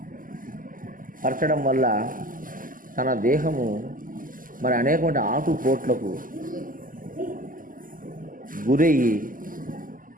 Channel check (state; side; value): late; left; 0.40 ms